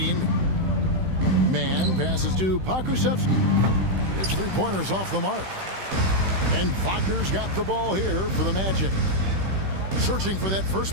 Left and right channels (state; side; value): late; left; 16 ms